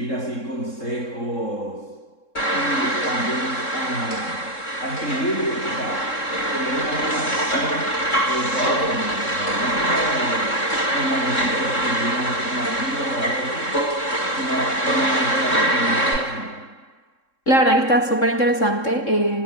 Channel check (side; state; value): right; late; 3.7 ms